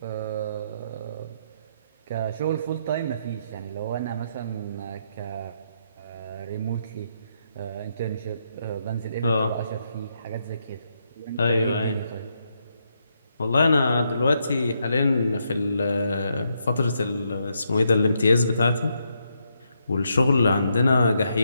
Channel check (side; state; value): both; inverted; correlation -0.78